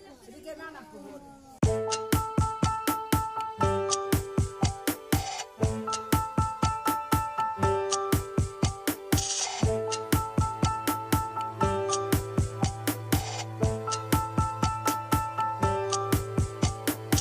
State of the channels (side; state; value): both; identical; correlation 1.00